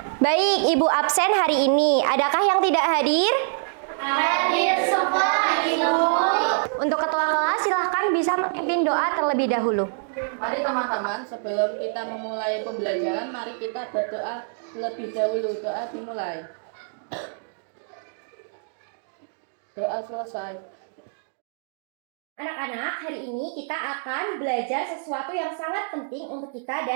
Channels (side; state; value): left; silent; digital silence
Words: Baik, Ibu absen hari ini. Adakah yang tidak hadir? Hadir semua Ibu. Untuk ketua kelas silahkan bisa memimpin doa terlebih dahulu. Mari teman-teman, sebelum kita memulai pembelajaran, mari kita berdoa terlebih dahulu. Doa dimulai. Doa selesai. Anak-anak, hari ini kita akan belajar sesuatu yang sangat penting untuk kita